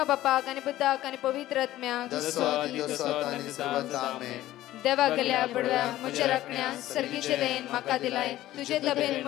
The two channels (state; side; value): quieter; right; 14.9 dB